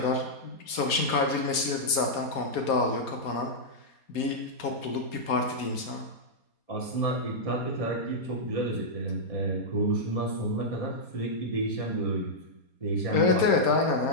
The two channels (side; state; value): right; late; 4.2 ms